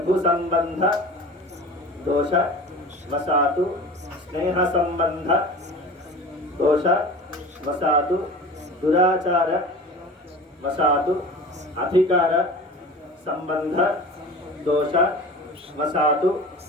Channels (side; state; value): both; normal; correlation 0.37